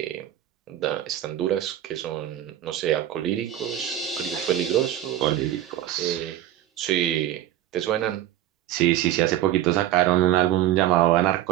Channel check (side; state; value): left; quieter; 12.7 dB